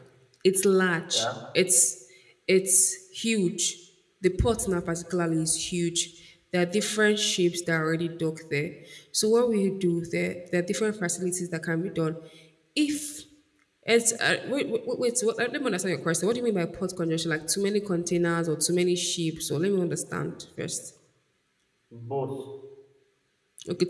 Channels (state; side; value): identical; both; correlation 1.00